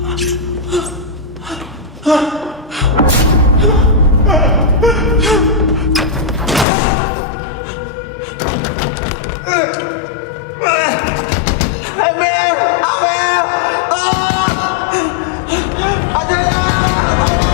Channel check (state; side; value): drops out; right; at 6.7 s